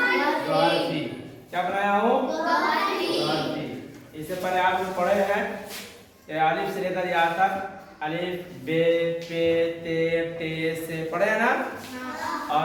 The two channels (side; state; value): both; identical; correlation 1.00